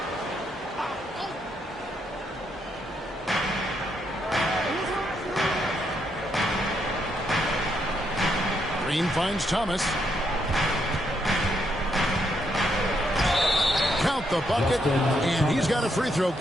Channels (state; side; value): normal; both; correlation 0.77